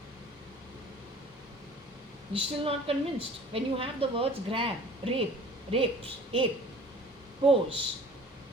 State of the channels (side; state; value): both; normal; correlation 0.47